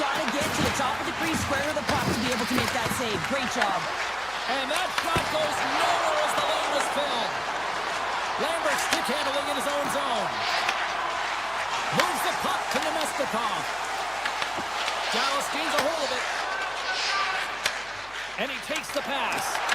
to get to the top of the crease, square of the puck to be able to make that save. Great job. And that shot goes nowhere as the lane was filled. Lambert stick handling in his own zone. Moves the puck to Nemestikov. Dallas gains a hold of it. And he takes the pass.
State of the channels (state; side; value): noise; left; hum, 25 dB below the sound